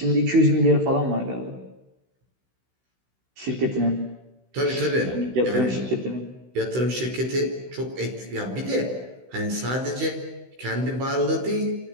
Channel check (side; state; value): left; late; 16 ms